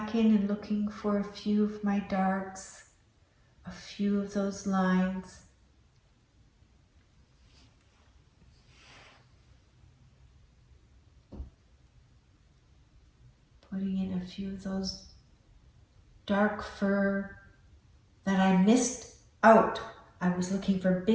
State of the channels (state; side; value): identical; both; correlation 1.00